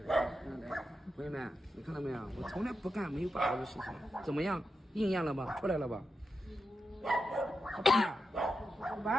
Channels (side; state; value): both; normal; correlation 0.88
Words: 朋友们，你看到没有？我从来不干没有把握的事情，怎么样？应验了吧？出来了吧？小